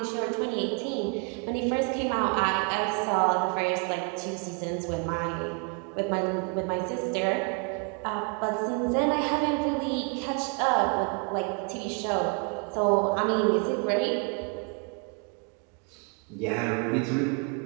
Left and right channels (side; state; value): left; quieter; 35.6 dB